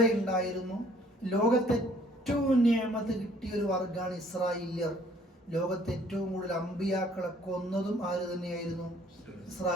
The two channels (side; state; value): both; normal; correlation 0.59